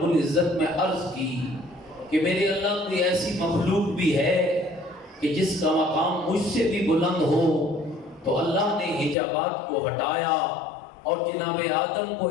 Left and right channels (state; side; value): drops out; right; at 9.2 s